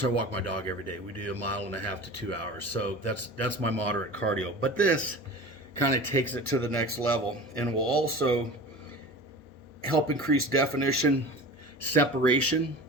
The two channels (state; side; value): normal; both; correlation 0.35